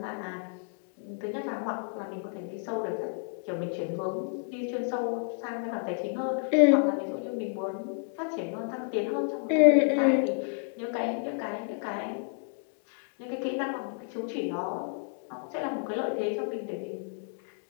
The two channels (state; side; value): silent; right; 57 dB below the other